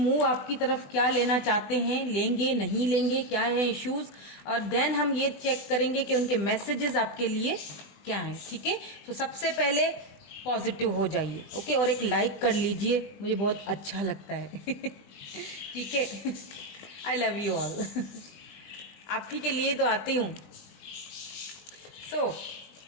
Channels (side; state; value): right; late; 20 ms